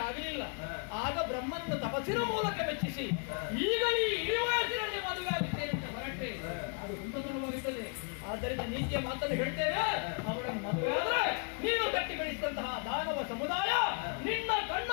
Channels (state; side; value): quieter; right; 38.6 dB